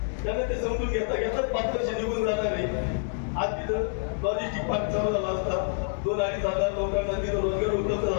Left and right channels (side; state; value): right; silent; digital silence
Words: त्याला ते समजून घेता घेतात 5 वर्ष निघून जाणार आहे. आज तिथं लॉजिस्टिक पार्क चालू झाला असता, 2-2,500 लोकांना तिथं रोजगार उपलब्ध